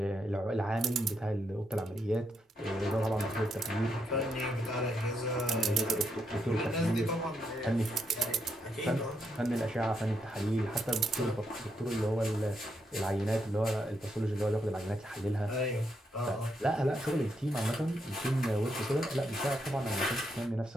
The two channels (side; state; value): both; normal; correlation 0.79